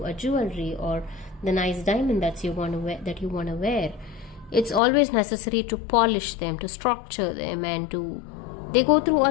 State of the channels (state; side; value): drops out; right; at 4.8 s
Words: a jewelry, or the nice diamond that you want to wear, it's always necessary to polish them, to structure them, and they go through